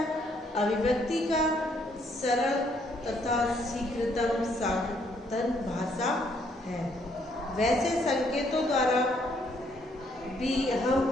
अभिव्यक्ति का सरल तथा शीघ्रतम साधन भाषा है। वैसे संकेतों द्वारा भी हम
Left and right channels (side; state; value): both; normal; correlation 0.69